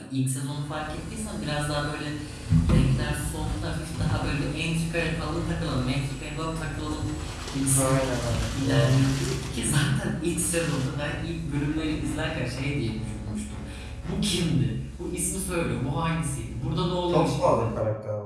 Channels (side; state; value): both; identical; correlation 1.00